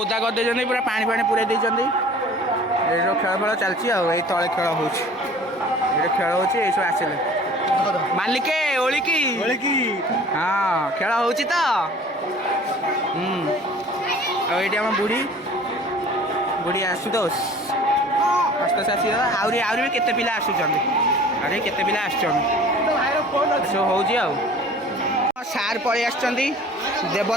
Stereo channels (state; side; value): normal; both; correlation 0.47